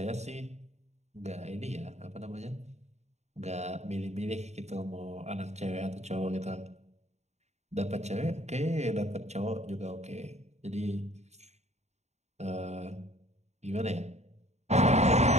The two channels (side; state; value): left; late; 0.32 ms